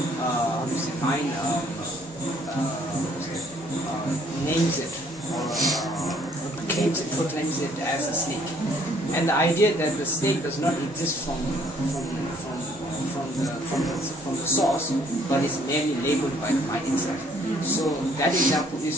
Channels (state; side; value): normal; both; correlation 0.62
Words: names it or proclaims it as a snake. And the idea that the snake does not exist from the source, but is merely labeled by the mind itself. So that example